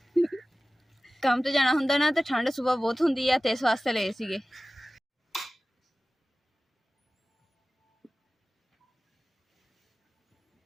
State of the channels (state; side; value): normal; both; correlation 0.96